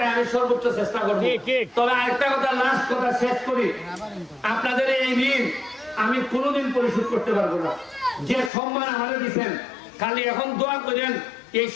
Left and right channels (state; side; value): drops out; right; at 8.5 s